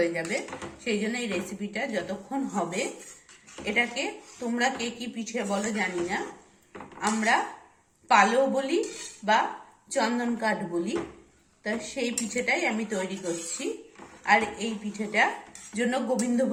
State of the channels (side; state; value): both; identical; correlation 1.00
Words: যাবে। সেই জন্য এই রেসিপিটা যতক্ষণ হবে, এটাকে তোমরা কে কি পিঠে বলো জানি না, আমরা পালো বলি বা চন্দন কাঠ বলি। তা সেই পিঠেটাই আমি তৈরি করছি। আর এই পিঠেটার জন্য